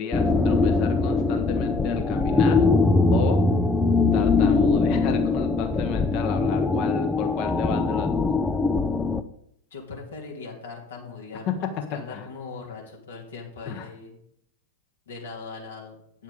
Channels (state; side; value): quieter; right; 3.5 dB